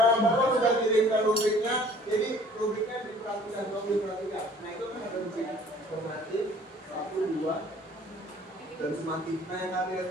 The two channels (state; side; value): normal; both; correlation 0.53